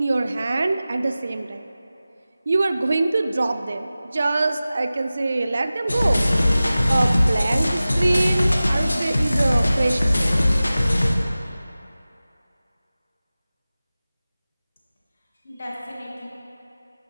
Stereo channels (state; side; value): inverted; both; correlation -0.96